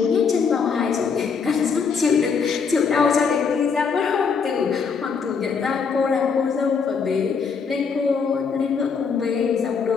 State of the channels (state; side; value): quieter; right; 5.8 dB